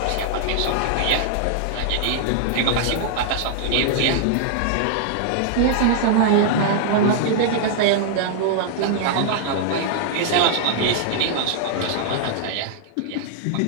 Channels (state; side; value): different; both; correlation -0.01